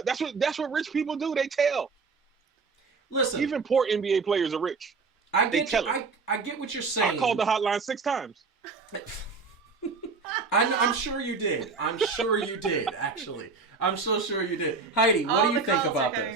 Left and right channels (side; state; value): left; quieter; 4.5 dB